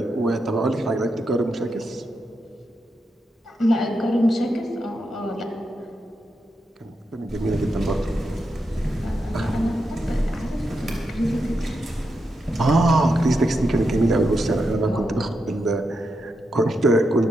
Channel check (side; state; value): both; normal; correlation 0.85